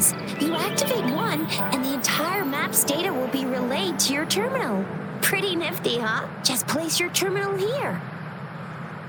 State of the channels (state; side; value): identical; both; correlation 1.00